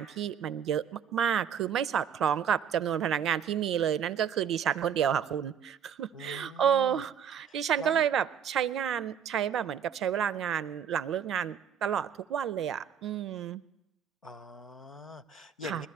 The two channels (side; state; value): left; quieter; 8.4 dB